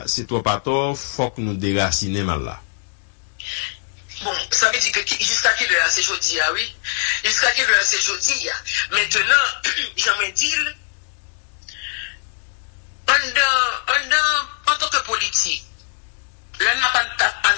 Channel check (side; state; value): right; silent; digital silence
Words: c'est toi pas tort, faut que nous déraciner mal là. Bon, ça veut dire que jusqu'à quelle heure c'est jeudi, ah oui? Jusqu'à quelle heure c'est jeudi? Maintenant, j'aimerais dire, en tant que politique, là, on n'a pas